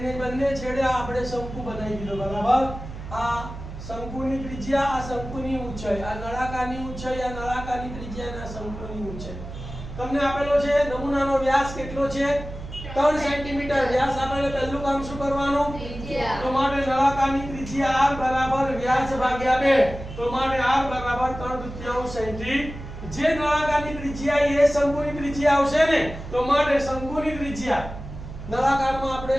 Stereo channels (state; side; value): noise; right; hum, 11 dB below the sound